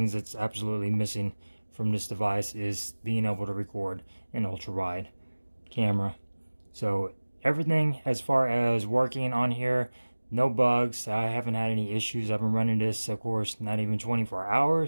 that's absolutely missing from this device, is being able to record in ultra wide camera. So everything as far as working on here, no bugs. I haven't had any issues. I've been running this, of course, not even 24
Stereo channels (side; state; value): both; inverted; correlation -1.00